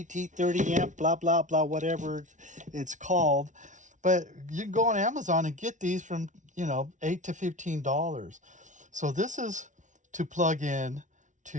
30 amp, blah, blah, blah, whatever it's called. But you can go on Amazon and get these from, $8 to $15. So this is to plug in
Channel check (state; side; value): late; left; 0.36 ms